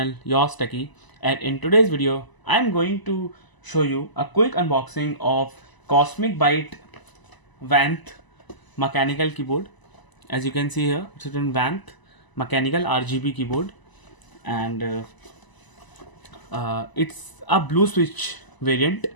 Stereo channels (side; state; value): right; late; 1.0 ms